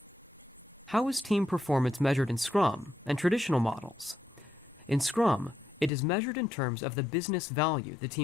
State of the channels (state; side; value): drops out; right; at 5.9 s